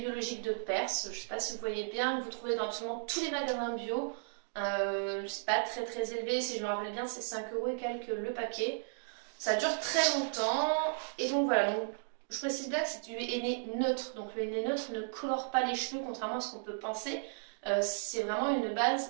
de Perse, je ne sais pas si vous voyez bien, que vous trouvez dans absolument tous les magasins bio. C'est pas très élevé, si je me rappelle bien c'est 5 € et quelques le paquet. Ça dure très longtemps et donc voilà. Donc, je précise bien que c'est du henné neutre, donc le henné neutre ne colore pas les cheveux contrairement à ce qu'on peut penser. C'est vraiment une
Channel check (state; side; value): silent; left; digital silence